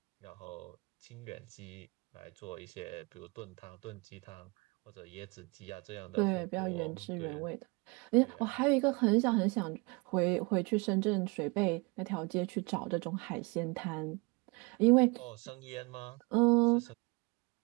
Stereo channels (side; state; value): left; quieter; 28.3 dB